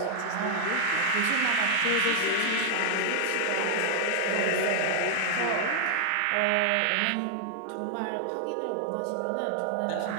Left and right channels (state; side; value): different; both; correlation 0.00